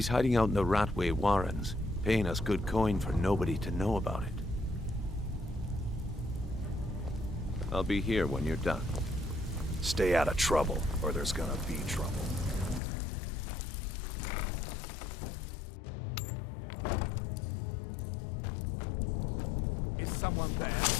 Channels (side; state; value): right; drops out; at 12.8 s